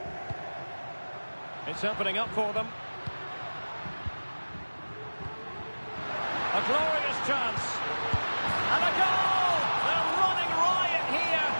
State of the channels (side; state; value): both; inverted; correlation -1.00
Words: It's opening up for them. A glorious chance. And a goal! They're running riot here,